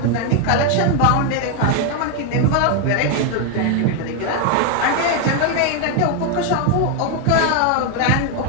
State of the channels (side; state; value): both; different; correlation 0.01